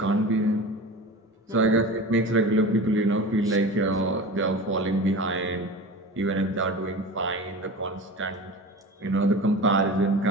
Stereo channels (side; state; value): both; normal; correlation 0.33